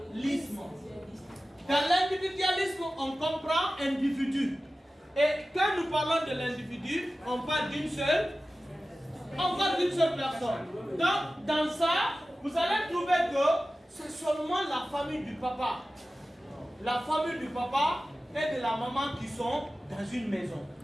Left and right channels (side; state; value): both; normal; correlation 0.95